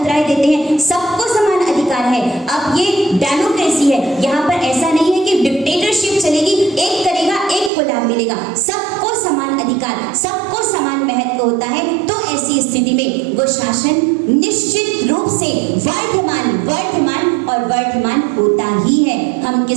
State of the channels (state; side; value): drops out; left; at 7.7 s